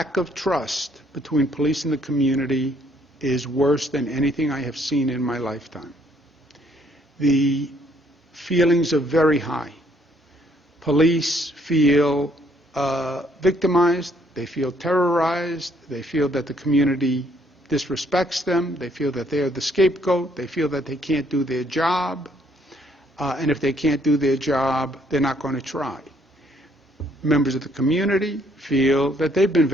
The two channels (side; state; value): both; normal; correlation 0.67